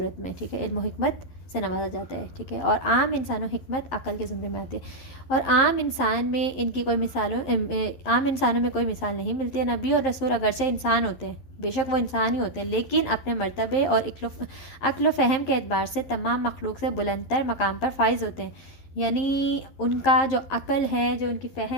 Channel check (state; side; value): late; right; 11 ms